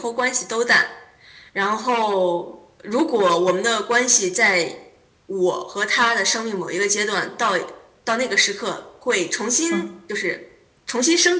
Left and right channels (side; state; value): both; identical; correlation 1.00